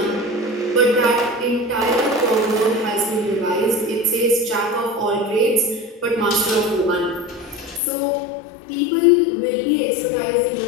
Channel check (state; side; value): drops out; right; at 7.8 s